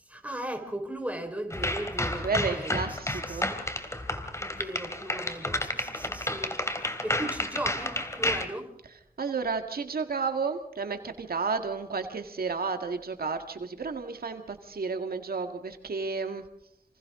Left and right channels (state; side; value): normal; both; correlation 0.18